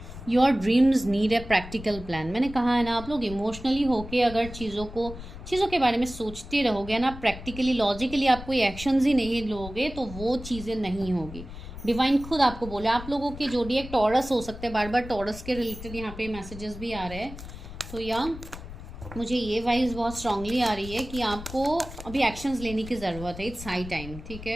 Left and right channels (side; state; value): left; noise; rumble, 12 dB below the sound